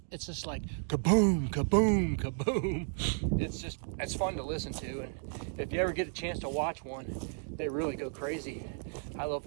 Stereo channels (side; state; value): left; silent; 56 dB below the other